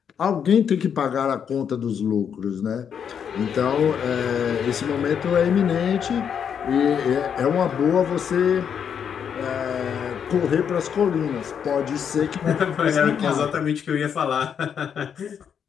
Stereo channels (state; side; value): quieter; right; 7.7 dB